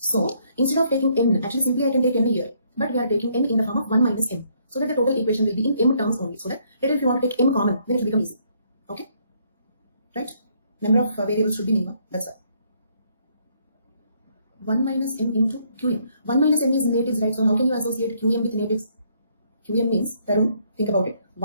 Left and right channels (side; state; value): both; inverted; correlation -0.69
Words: instead of taking n, actually simply I can take n here, but we are taking n in the form of 1 minus m, so that the total equation will be in m terms only. So that later if you want to take m common, then it will become easy. Okay, right? Number of variables should be minimum. That's why 1 minus m into qm. 1 minus m is natives, right? So how can you associate qm with natives? Qm means, Tarun, think about it.